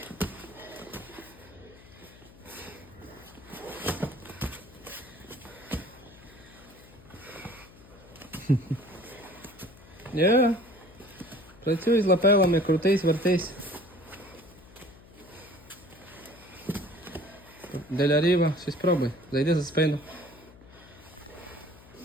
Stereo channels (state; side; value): noise; left; hum, 22 dB below the sound